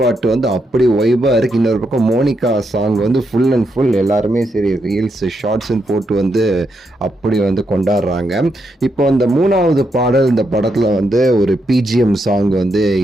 பாட்டு வந்து அப்படி வைபாக இருக்குது. இன்னொரு பக்கம் மோனிகா சாங் வந்து ஃபுல் அண்ட் ஃபுல் எல்லாருமே சரி ரீல்ஸ் ஷார்ட்ஸ்ன்னு போட்டு வந்து அப்படி வந்து கொண்டாடுறாங்க. இப்போ அந்த 3வது பாடல் இந்த படத்தில் வந்து ஒரு பிஜிஎம் சாங் வந்து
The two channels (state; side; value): normal; both; correlation 0.81